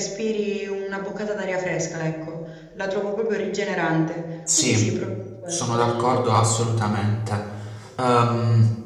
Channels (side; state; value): both; identical; correlation 1.00